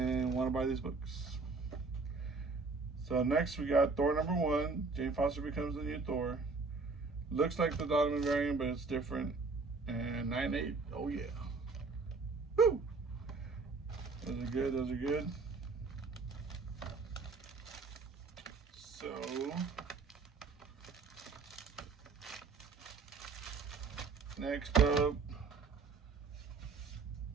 want to buy these books. So next we got Thor number 1. Jane Foster becomes the new Thor. Looks like the Dodderman variant, but it's different. And 9.8. Oh yeah. Woo! Those are good. Those are good. So next up,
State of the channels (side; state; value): left; quieter; 4.3 dB